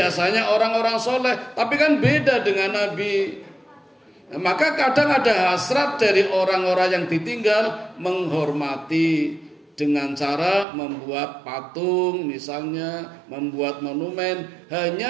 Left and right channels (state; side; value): drops out; left; at 10.7 s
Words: orang-orang soleh, tapi kan beda dengan Nabi. Nah, maka kadang ada hasrat dari orang-orang yang ditinggal menghormati dengan cara membuat patung, misalnya membuat monumen,